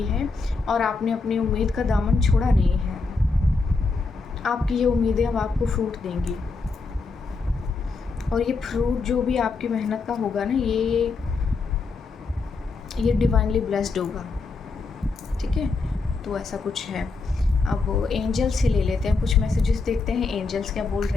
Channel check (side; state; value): right; quieter; 4.1 dB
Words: है और आपने अपनी उम्मीद का दामन छोड़ा नहीं है। आपकी ये उम्मीदें अब आपको फ्रूट देंगी, और ये फ्रूट जो भी आपकी मेहनत का होगा ना, ये डिवाइनली ब्लेस्ड होगा, ठीक है। तो ऐसा कुछ है। अब एंजल्स से ले लेते हैं कुछ मैसेजेस, देखते हैं एंजल्स क्या बोल